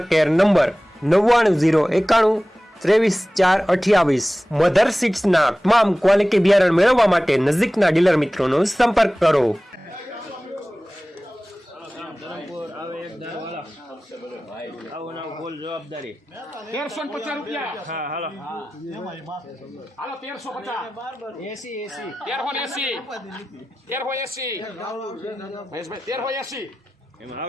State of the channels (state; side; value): normal; both; correlation 0.96